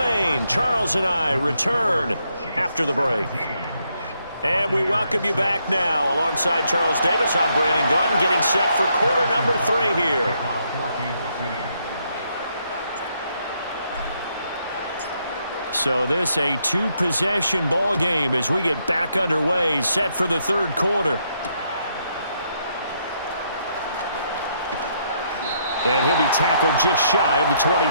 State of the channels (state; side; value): inverted; both; correlation -0.75